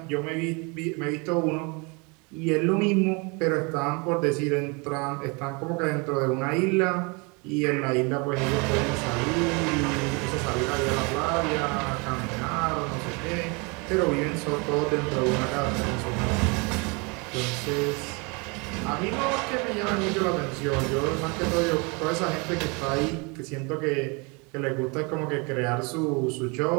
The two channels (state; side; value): quieter; left; 30.4 dB